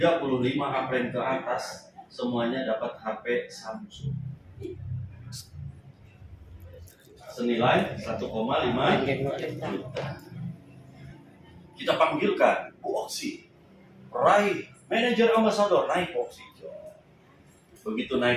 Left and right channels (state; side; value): identical; both; correlation 1.00